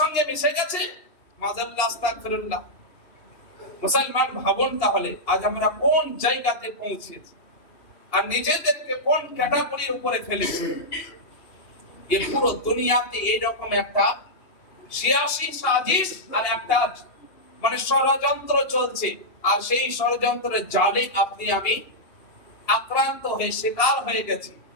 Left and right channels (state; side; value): late; right; 2.8 ms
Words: মিশে গেছে। মাযাল্লাহ, আস্তাগফিরুল্লাহ। মুসলমান ভাবুন তাহলে আজ আমরা কোন জায়গাতে পৌঁছেছি আর নিজেদেরকে কোন ক্যাটাগরির উপরে ফেলেছি। এই পুরো দুনিয়াতে এইরকম একটা সিয়াসি সাজিশ আর একটা মানে ষড়যন্ত্র চলছে, আর সেই ষড়যন্ত্রের জালে আপনি আমি আক্রান্ত হয়ে শিকার হয়ে গেছি,